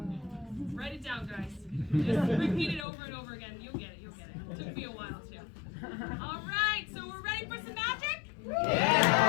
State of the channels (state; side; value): drops out; right; at 2.9 s